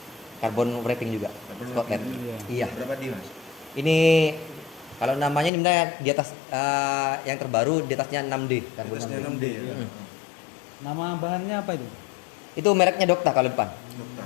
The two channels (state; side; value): drops out; right; at 5.5 s